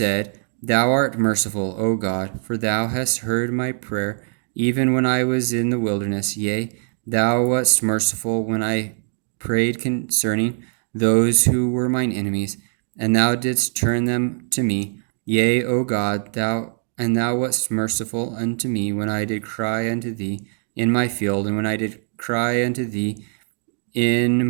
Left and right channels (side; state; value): left; silent; digital silence